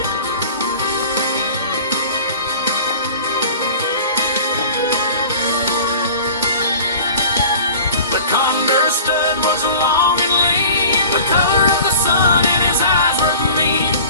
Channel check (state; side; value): inverted; both; correlation -0.42